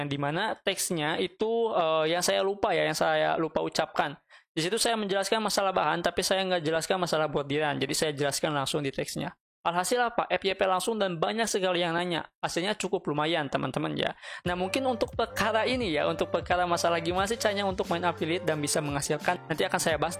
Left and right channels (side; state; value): both; identical; correlation 1.00